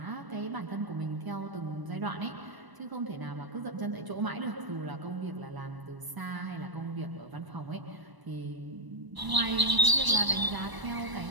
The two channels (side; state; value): left; late; 1.0 ms